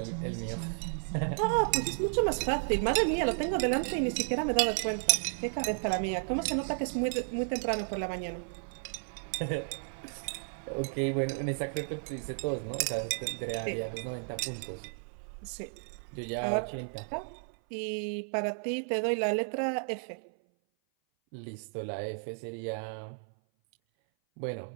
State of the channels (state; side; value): silent; left; 56 dB below the other